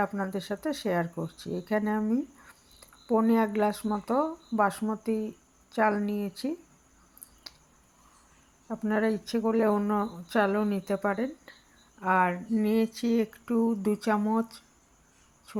আপনাদের সাথে শেয়ার করছি। এখানে আমি 1.25 গ্লাস মতো বাসমতি চাল নিয়েছি। আপনারা ইচ্ছে করলে অন্য চালও নিতে পারেন। আর নিয়েছি একটু 2 চামচ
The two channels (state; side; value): identical; both; correlation 1.00